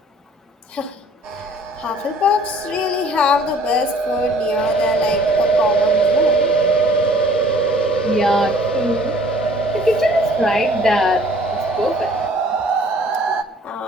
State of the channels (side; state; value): both; normal; correlation 0.54